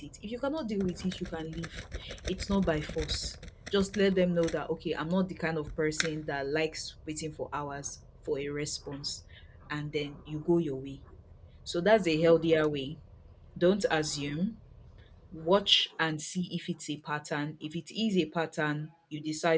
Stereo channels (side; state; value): both; identical; correlation 1.00